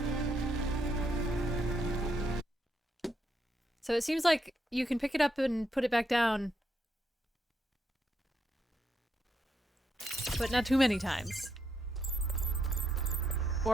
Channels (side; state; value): both; normal; correlation 0.79